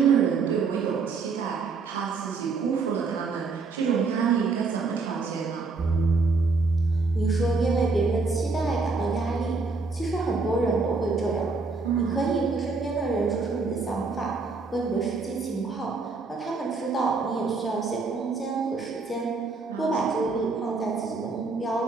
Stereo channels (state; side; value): quieter; left; 4.3 dB